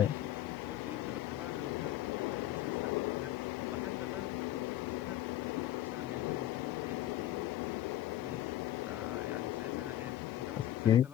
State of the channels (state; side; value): quieter; right; 13.0 dB